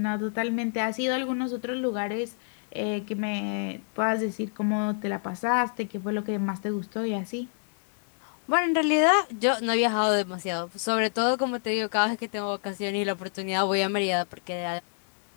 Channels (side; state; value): right; silent; 59 dB below the other